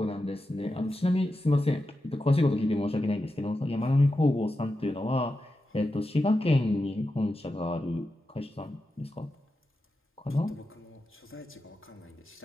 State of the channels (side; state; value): both; normal; correlation 0.90